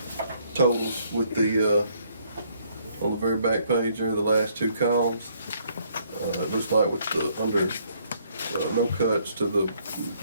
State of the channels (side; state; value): both; inverted; correlation -0.67